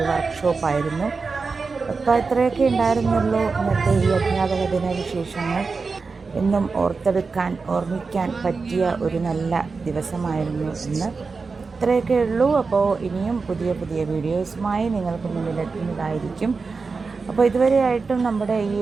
വർക്ക്ഷോപ്പായിരുന്നു. അപ്പോൾ ഇത്രയൊക്കെ ഉണ്ടായിരുന്നുള്ളൂ ഇന്നത്തെ ഈ അധ്യാപക ദിന വിശേഷങ്ങൾ. എന്നും ഓർമ്മിക്കാൻ പറ്റിയ ഒരു നല്ല ദിവസമായിരുന്നു ഇന്ന്. ഇത്രയൊക്കെ ഉള്ളൂ. അപ്പോൾ ഇനിയും പുതിയ പുതിയ വീഡിയോസുമായി നിങ്ങൾക്ക് മുന്നിലെത്തുന്നതായിരിക്കും. അപ്പോൾ ഇതുവരെയായിട്ടും നമ്മുടെ ഈ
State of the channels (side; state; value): left; quieter; 4.5 dB